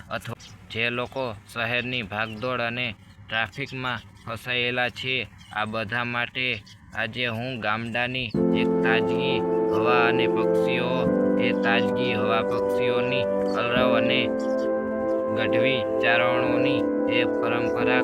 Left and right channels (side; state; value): both; identical; correlation 1.00